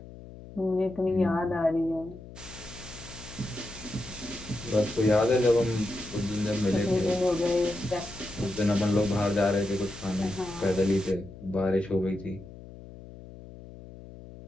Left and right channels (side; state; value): left; noise; hum, 16 dB below the sound